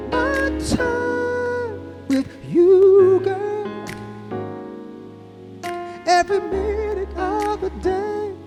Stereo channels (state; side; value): identical; both; correlation 1.00